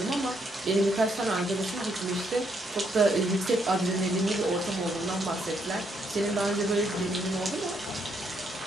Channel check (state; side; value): normal; both; correlation 0.74